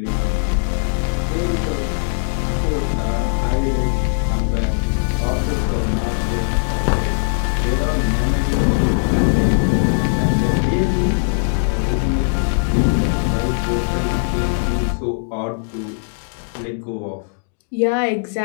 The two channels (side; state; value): right; silent; 62 dB below the other